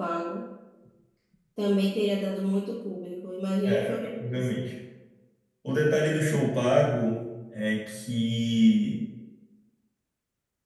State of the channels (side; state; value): both; identical; correlation 1.00